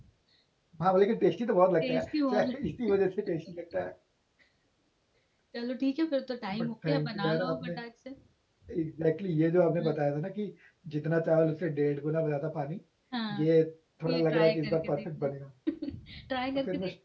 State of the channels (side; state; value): both; identical; correlation 1.00